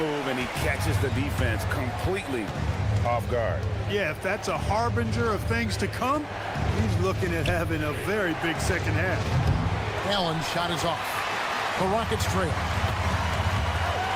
and he catches the defense completely off guard. Yeah, if that's a harbinger of things to come, he's looking at having a very big second half. Allen's shot is off. The Rockets trail.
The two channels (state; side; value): identical; both; correlation 1.00